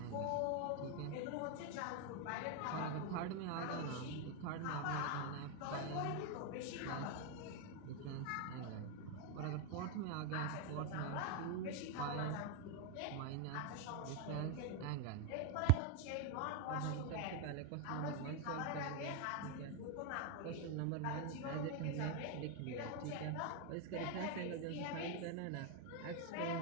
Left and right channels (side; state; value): both; different; correlation 0.01